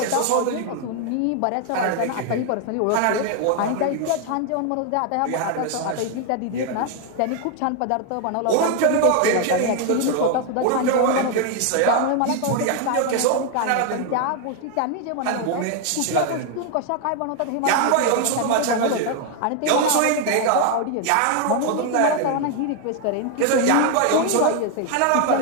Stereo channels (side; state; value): both; different; correlation 0.00